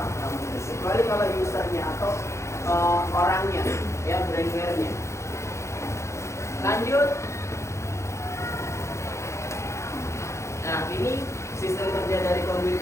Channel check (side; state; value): right; late; 0.14 ms